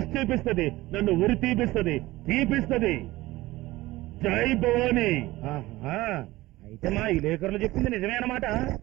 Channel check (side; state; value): left; quieter; 18.4 dB